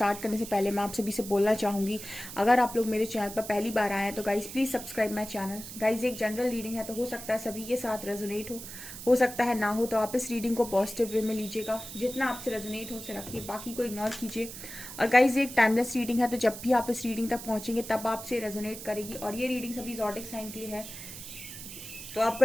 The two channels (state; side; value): noise; right; hiss, 11 dB below the sound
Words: करने से पहले मैं आप सभी से बोलना चाहूंगी, अगर आप लोग मेरे चैनल पर पहली बार आए हैं तो guys please subscribe my channel. Guys, एक जनरल रीडिंग है तो हो सकता है सभी के साथ रेजोनेट हो सकता है ना हो, तो आप इस रीडिंग को पॉजिटिव वे में लीजिएगा। जितना आपसे रेजोनेट हो उसे रखिए, बाकी को इग्नोर कीजिए। और गाइस, ये एक टाइमलेस रीडिंग है, तो जब भी आप इस रीडिंग तक पहुंचेंगे तब आपसे रेजोनेट करेगी। और ये रीडिंग सभी ज़ोडिक साइन के लिए है, तो